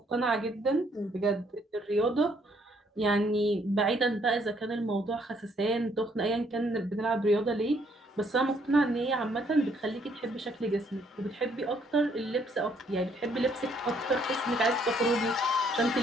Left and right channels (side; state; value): both; normal; correlation 0.67